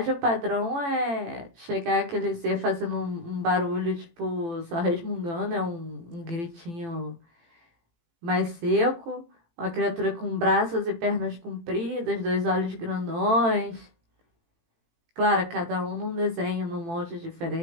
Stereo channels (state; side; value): late; left; 18 ms